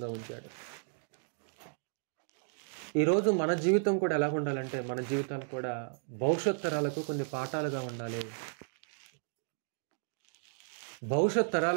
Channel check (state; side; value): silent; left; digital silence